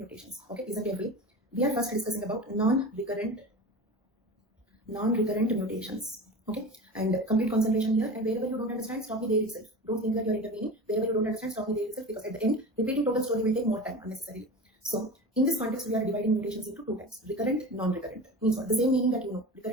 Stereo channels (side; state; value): both; normal; correlation 0.32